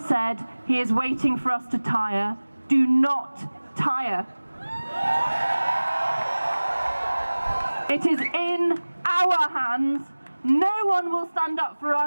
he is waiting for us to tire. Do not tire. It is in our hands. No one will stand up for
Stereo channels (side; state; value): both; inverted; correlation -1.00